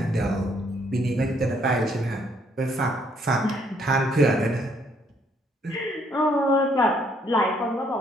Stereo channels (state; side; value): normal; both; correlation 0.68